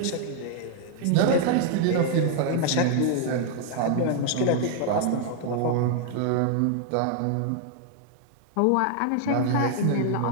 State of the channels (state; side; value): different; both; correlation 0.00